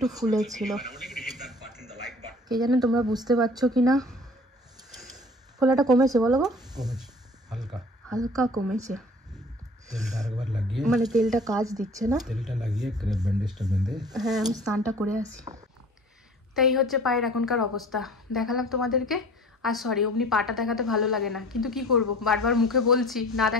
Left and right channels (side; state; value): both; normal; correlation 0.46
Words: ফুলেছিল, কে জানে তোমরা বুঝতে পারছো কিনা। ফোলাটা কমেছে বলো গো? কমেছে, হালকা কমেছে। তেলটা আরেকবার লাগিয়ে, মানে তেলটা কাজ দিচ্ছে না, তেলটা লাগিয়ে ক্রেপ ব্যান্ডেজটা বেঁধে। হ্যাঁ আমি স্নানটা করে আসি। তাই হচ্ছে পায়ের এখনকার অবস্থা, দেখালাম তোমাদেরকে। আর সরি, অমনি পাটা দেখাতে ভালো লাগে না, কিন্তু কি করব, বারবার মুখে বলছি, না